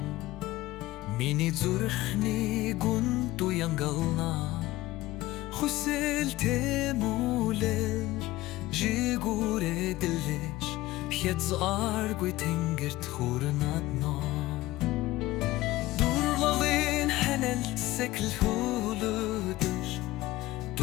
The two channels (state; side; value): quieter; right; 17.4 dB